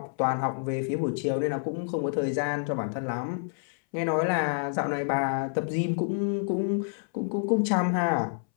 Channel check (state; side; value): silent; right; 59 dB below the other